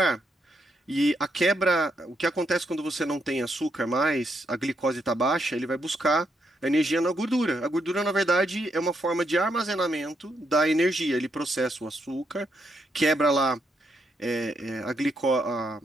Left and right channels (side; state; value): both; normal; correlation 0.78